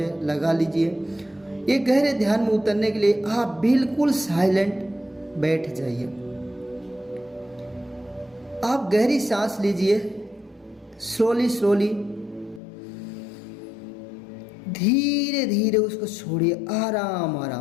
लगा लीजिए। ये गहरे ध्यान में उतरने के लिए आप बिल्कुल साइलेंट बैठ जाइए। आप गहरी सांस लीजिए, स्लोली धीरे धीरे उसको छोड़िए,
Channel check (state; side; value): drops out; right; at 12.6 s